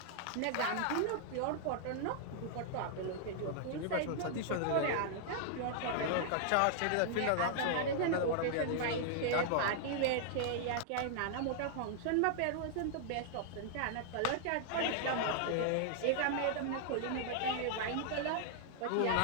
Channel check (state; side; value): different; both; correlation -0.01